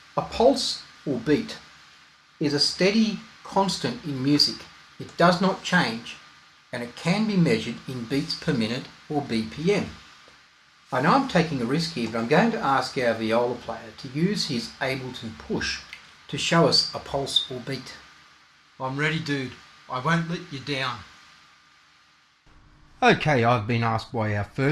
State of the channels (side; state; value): both; identical; correlation 1.00